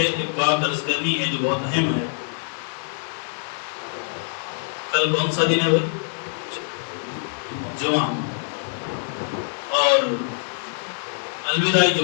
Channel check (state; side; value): silent; right; digital silence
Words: ایک بات عرض کرنی ہے جو بہت اہم ہے۔ کل کون سا دن ہے بھائی؟ جمعہ، اور الوداعی